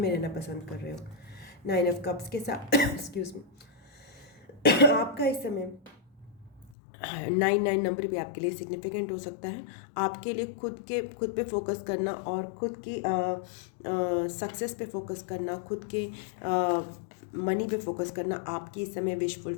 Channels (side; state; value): right; drops out; at 6.8 s